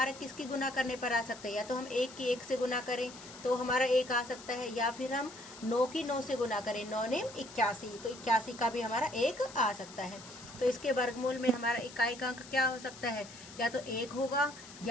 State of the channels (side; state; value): left; noise; hiss, 17 dB below the sound